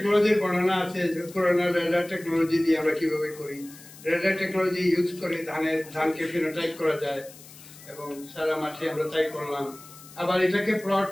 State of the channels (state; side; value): noise; left; hiss, 19 dB below the sound